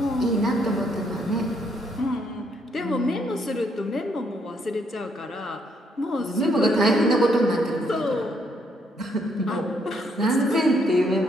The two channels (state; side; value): normal; both; correlation 0.72